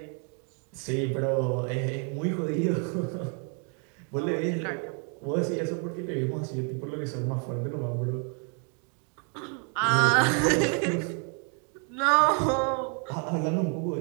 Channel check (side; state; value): left; quieter; 38.8 dB